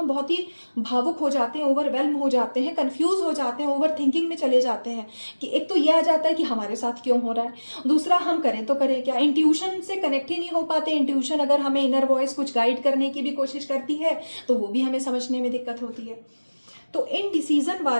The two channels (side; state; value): both; inverted; correlation -1.00